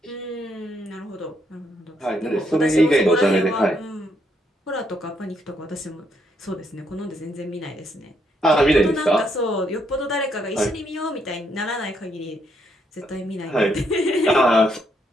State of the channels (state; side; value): normal; both; correlation 0.75